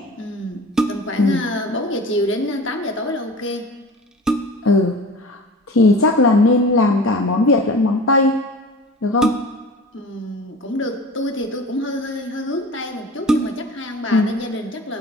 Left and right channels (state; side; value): normal; both; correlation 0.38